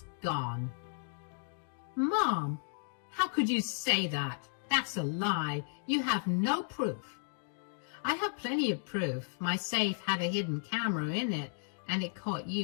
gone." "Mom, how could you say that? That's a lie. You have no proof." "I have plenty of proof. My safe had a hidden camera in it, and it caught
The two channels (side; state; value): right; silent; digital silence